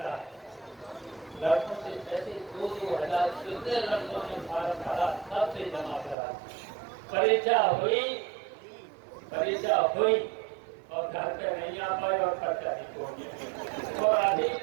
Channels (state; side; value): drops out; left; at 6.2 s